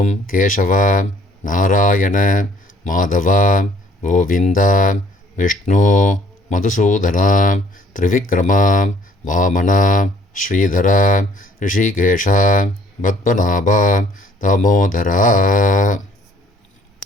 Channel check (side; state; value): both; normal; correlation 0.59